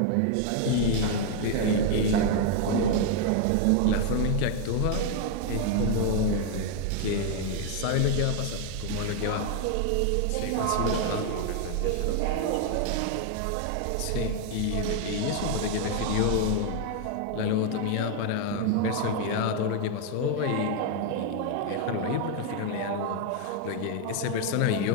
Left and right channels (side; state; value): both; different; correlation 0.00